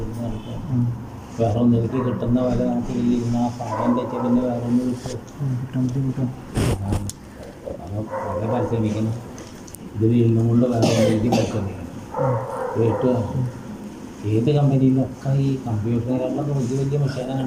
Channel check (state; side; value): identical; both; correlation 1.00